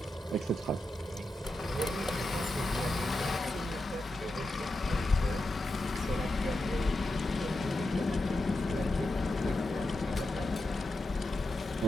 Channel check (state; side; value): normal; both; correlation 0.89